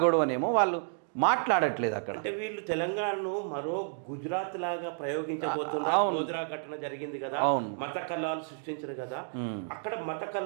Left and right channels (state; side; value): silent; left; digital silence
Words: గొడవనేమో వాళ్ళు మాట్లాడట్లేదు అక్కడ. అంటే వీళ్ళు తెలంగాణను మరో గుజరాత్ లాగా ప్రయోగించబోతున్నారు. గోద్రా ఘటన జరిగింది కదా, మత కల్లాలు సృష్టించారు కదా. అక్కడ మత